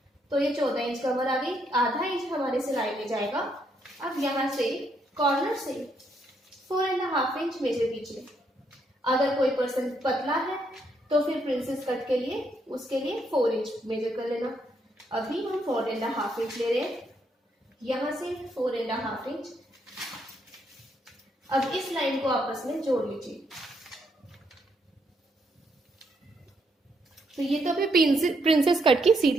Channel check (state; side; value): normal; both; correlation 0.75